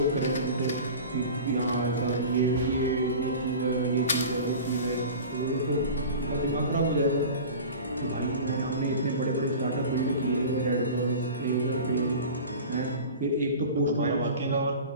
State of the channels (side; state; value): both; inverted; correlation -0.37